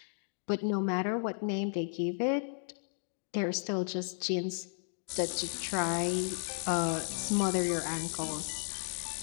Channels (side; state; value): right; silent; digital silence